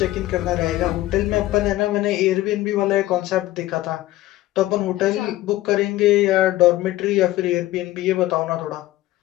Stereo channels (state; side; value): quieter; right; 16.1 dB